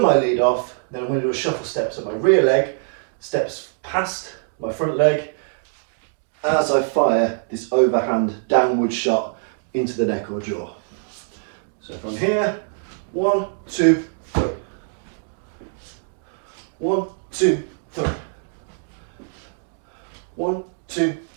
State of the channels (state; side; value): silent; left; digital silence